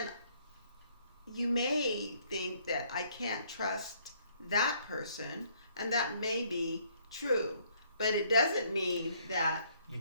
you may think that I can't trust that person, and that may be true. But it doesn't mean that You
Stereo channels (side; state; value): both; inverted; correlation -0.65